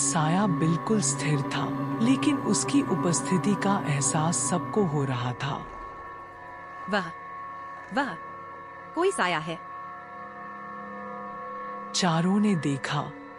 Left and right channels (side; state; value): both; identical; correlation 1.00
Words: बिल्कुल स्थिर था, लेकिन उसकी उपस्थिति का एहसास सबको हो रहा था। वह कोई साया है। चारों ने देखा,